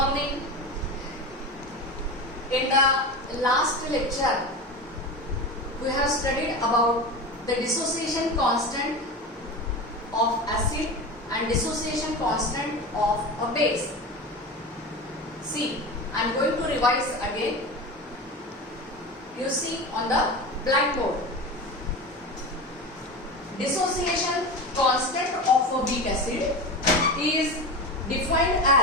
In the last lecture, we have studied about the dissociation constant of acid and dissociation constant of a base. See, I am going to revise again. You see on the blackboard. Dissociation constant of a weak acid is defined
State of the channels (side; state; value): both; normal; correlation 0.26